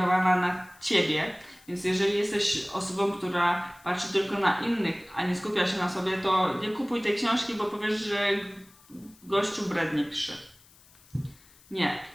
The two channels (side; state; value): left; noise; hiss, 27 dB below the sound